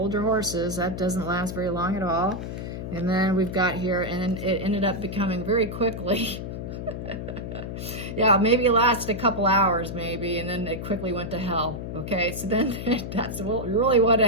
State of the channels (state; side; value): noise; left; hum, 6 dB below the sound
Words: your horses, that doesn't last very long at all. And then we've got here, and then it ended up becoming very quickly, yeah, maybe it lasted a couple hours maybe, and then it quickly went to hell. Okay, so then that's really what